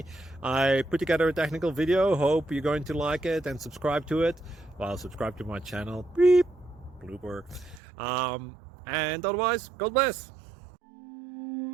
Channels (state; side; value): drops out; left; at 7.8 s